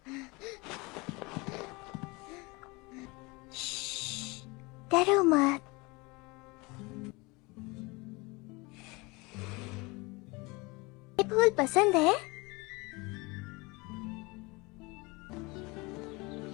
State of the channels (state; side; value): quieter; right; 25.6 dB